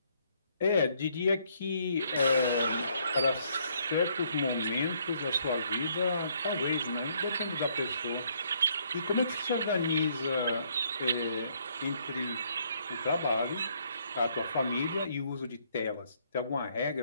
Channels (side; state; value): both; inverted; correlation -0.68